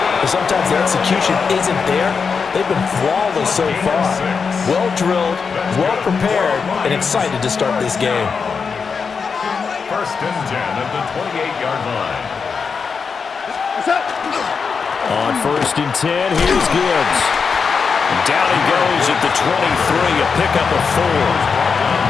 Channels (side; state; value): right; quieter; 5.5 dB